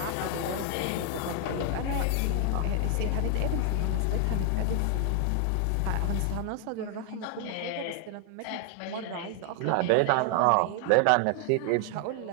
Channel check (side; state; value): both; different; correlation 0.00